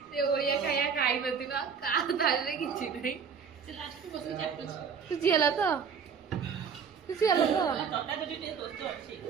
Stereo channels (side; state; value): left; quieter; 6.4 dB